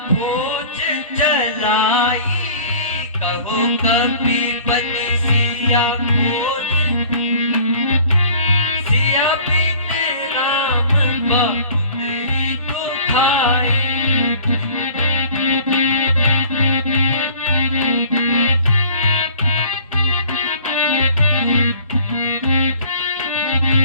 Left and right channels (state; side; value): inverted; both; correlation -0.48